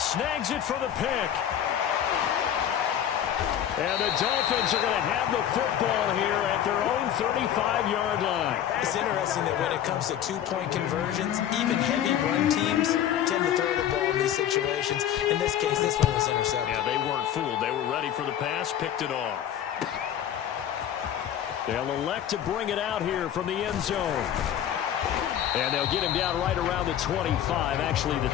Snags it for the pick. And the Dolphins are going to have the football here at their own 35-yard line. It's interesting that when it comes to two-point conversions, even heavy run teams tend to throw the ball in these situations. In this case, this one was intercepted. Yeah, they weren't fooled. They were ready for the pass, picked it off. They'll elect to bring it out here from the end zone. And they'll get him down right around the 25, actually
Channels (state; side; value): quieter; right; 10.3 dB